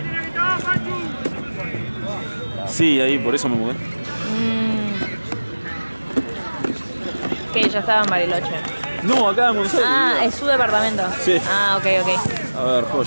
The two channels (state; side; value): inverted; both; correlation -1.00